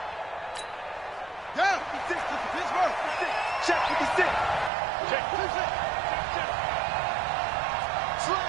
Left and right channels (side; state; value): left; drops out; at 4.7 s